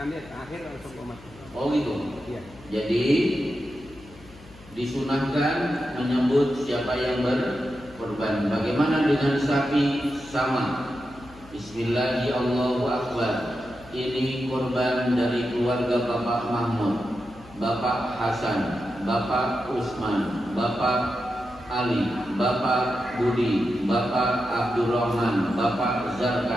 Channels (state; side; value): noise; left; hum, 21 dB below the sound